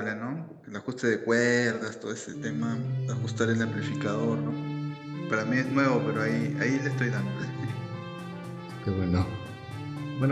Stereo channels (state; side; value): identical; both; correlation 1.00